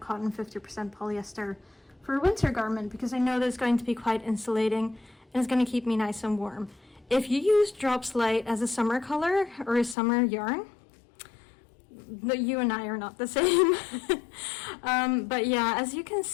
50% polyester for a winter garment, because I know that it's going to be quite insulating and it's going to keep me nice and warm. If you use Drops Light as a summer color or a summer yarn, you and I are not the same. But yeah, as you can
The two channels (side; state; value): right; drops out; at 10.0 s